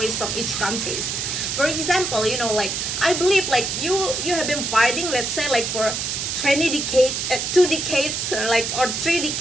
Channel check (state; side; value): noise; right; hiss, 2 dB below the sound